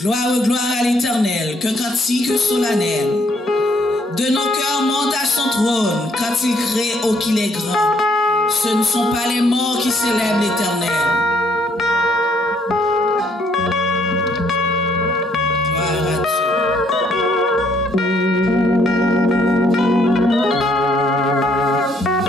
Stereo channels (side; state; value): both; normal; correlation 0.68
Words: gloire à l'Éternel, qu'un cantique solennel de nos cœurs monte à son trône quand il crée oh qu'il est grand. Ce ne sont pas les morts qui célèbrent l'Éternel. Gloire à Dieu.